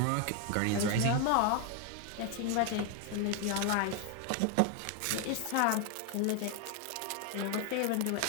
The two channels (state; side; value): different; both; correlation 0.01